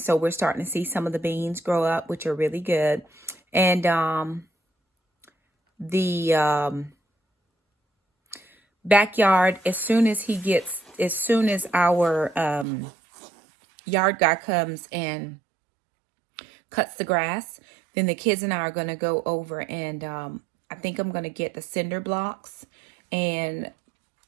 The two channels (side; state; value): left; drops out; at 12.7 s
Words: so we're starting to see some of the beans grow up, which are really good. And the backyard, as soon as our yard guy comes cuts the grass. Then the kids and I are going to go over and I think I'm going to get the cinder blocks and